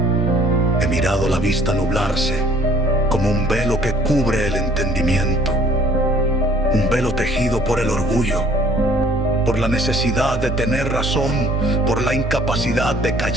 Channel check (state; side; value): normal; both; correlation 0.57